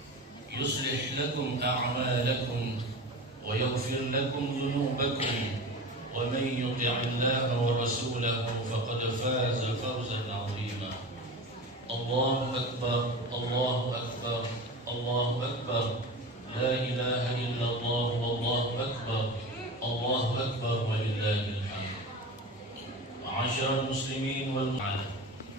يصلح لكم أعمالكم ويغفر لكم ذنوبكم، ومن يطع الله ورسوله فقد فاز فوزا عظيما. الله أكبر الله أكبر Allahu Akbar, la ilaha illallah, wallahu akbar, Allahu Akbar, walillahil hamd. Ma'asyiral muslimin wal muslimat.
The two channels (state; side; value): normal; both; correlation 0.30